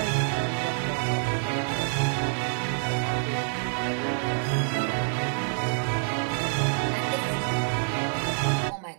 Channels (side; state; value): left; silent; digital silence